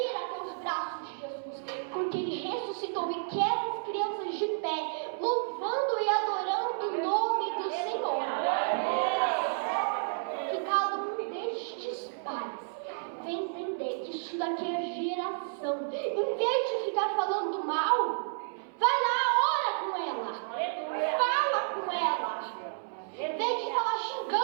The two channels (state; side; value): silent; left; 57 dB below the other